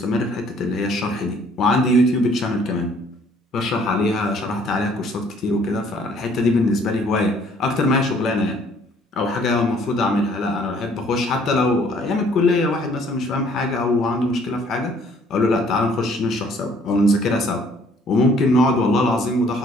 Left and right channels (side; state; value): both; normal; correlation 0.60